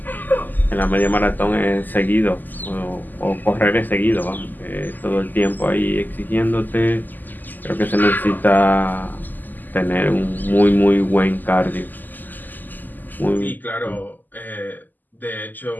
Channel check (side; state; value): right; late; 0.086 ms